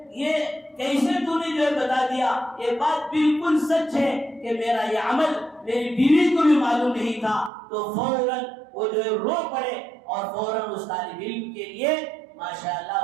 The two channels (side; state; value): left; drops out; at 7.5 s